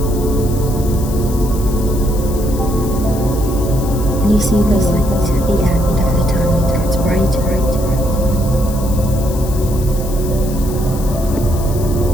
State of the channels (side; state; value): left; noise; hiss, 14 dB below the sound